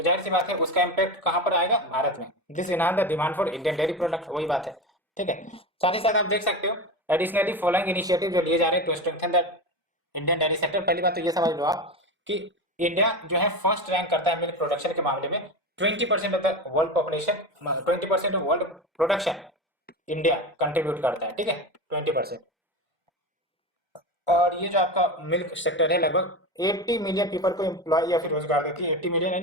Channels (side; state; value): both; normal; correlation 0.22